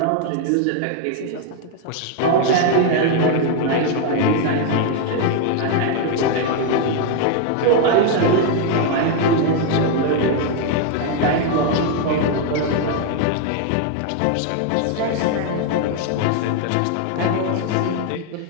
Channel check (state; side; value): different; both; correlation 0.01